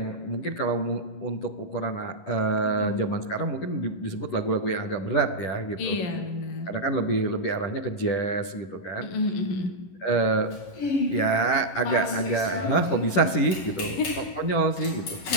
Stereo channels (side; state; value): right; late; 11 ms